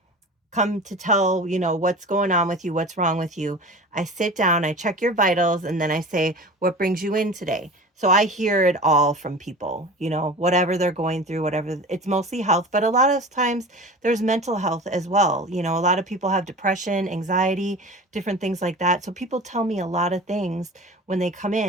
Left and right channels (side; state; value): both; normal; correlation 0.36